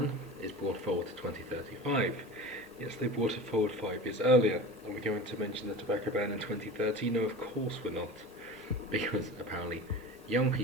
is brought forward to 2035. Yes, they brought it forward 5 years earlier. Are we going to mention the tobacco ban in 2030? No, of course we're not. Because apparently young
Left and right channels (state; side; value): normal; both; correlation 0.34